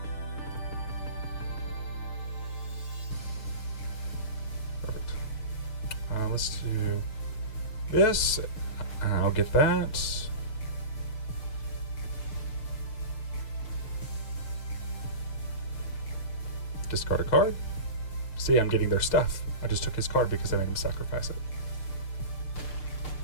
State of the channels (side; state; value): right; late; 6.7 ms